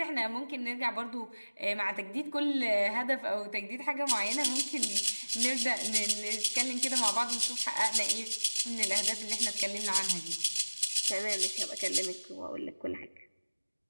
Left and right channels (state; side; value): inverted; both; correlation -1.00